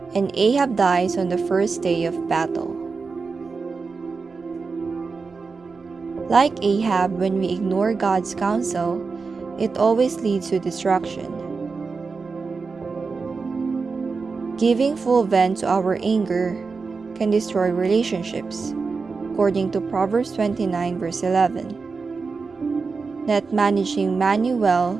and Ahab dies on the first day of battle. Like Ahab, when we ignore God's counsel, it always leads to destruction. Giving full vent to our anger can destroy relationships, according to Proverbs 29 verse 11. Not managing money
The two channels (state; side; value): quieter; left; 4.6 dB